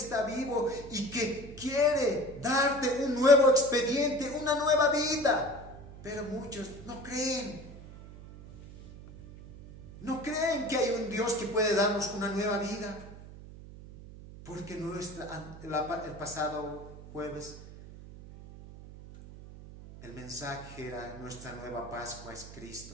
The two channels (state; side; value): noise; right; hum, 15 dB below the sound